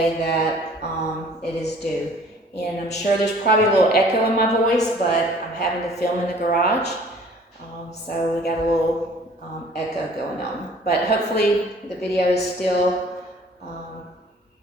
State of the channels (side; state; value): both; normal; correlation 0.53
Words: that it is due. And I'm sure there's probably a little echo in my voice, but I'm having to film in the garage, so we got a little echo going on. But hopefully the video is still